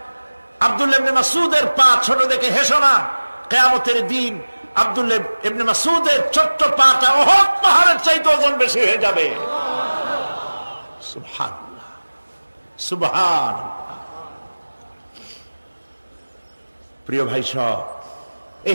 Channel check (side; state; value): both; inverted; correlation -1.00